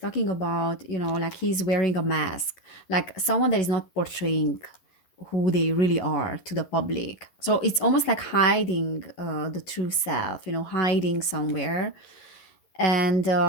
about, you know, like he's wearing a mask, like someone that is not portraying who they really are to the public. So it's almost like hiding the true self, you know, hiding somewhere. And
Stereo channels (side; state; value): right; late; 11 ms